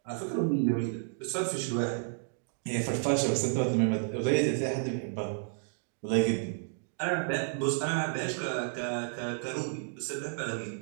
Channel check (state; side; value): silent; left; digital silence